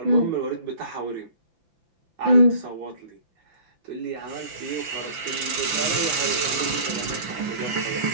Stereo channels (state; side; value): late; left; 6.0 ms